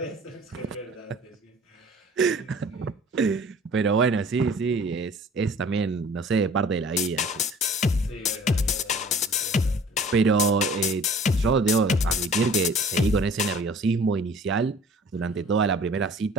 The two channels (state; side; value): normal; both; correlation 0.49